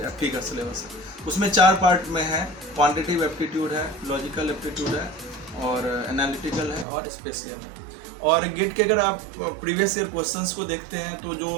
एप्टी का सिलेबस है। उसमें 4 पार्ट में है। क्वांटिटेटिव एप्टीट्यूड है, लॉजिकल एप्टीट्यूड है, और एनालिटिकल है, और स्पेशियल है। और गेट के अगर आप प्रीवियस ईयर क्वेश्चंस को देखते हैं तो जो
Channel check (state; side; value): drops out; left; at 6.9 s